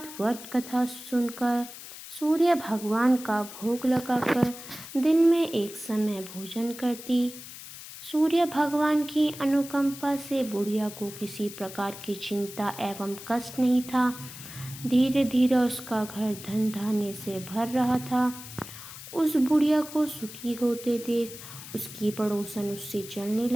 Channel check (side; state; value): left; noise; hiss, 14 dB below the sound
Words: व्रत कथा सुनकर सूर्य भगवान का भोग लगाकर दिन में एक समय भोजन करती। सूर्य भगवान की अनुकंपा से बुढ़िया को किसी प्रकार की चिंता एवं कष्ट नहीं था। धीरे धीरे उसका घर धन धान्य से भर रहा था। उस बुढ़िया को सुखी होते देख उसकी पड़ोसन उससे चलने